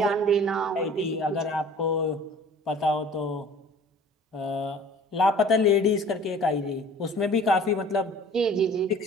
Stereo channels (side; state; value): both; normal; correlation 0.47